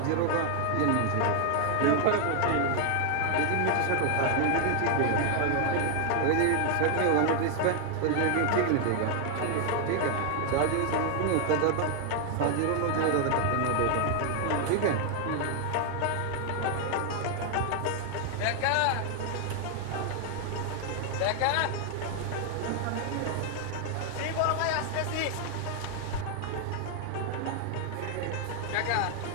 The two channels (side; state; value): both; different; correlation 0.00